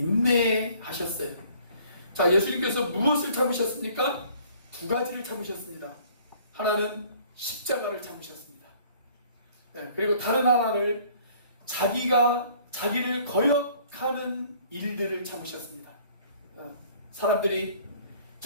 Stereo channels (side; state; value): both; inverted; correlation -0.56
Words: 자, 예수님께서 무엇을 참으셨습니까? 두 가지를 참으셨습니다. 하나는 십자가를 참으셨습니다. 그리고 다른 하나를 자기를 거역하는 일들을 참으셨습니다. 사람들이